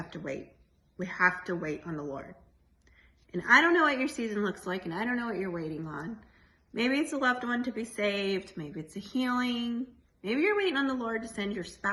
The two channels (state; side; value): identical; both; correlation 1.00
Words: to wait. We have to wait on the Lord. And I don't know what your season looks like, and I don't know what you're waiting on. Maybe it's a loved one to be saved. Maybe it's a healing. Maybe you're waiting on the Lord to send your